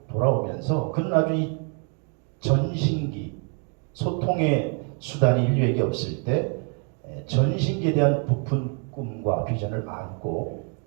돌아오면서 그는 아주 이 전신기, 소통의 수단이 인류에게 없을 때 전신기에 대한 부푼 꿈과 비전을 안고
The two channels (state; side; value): quieter; left; 38.2 dB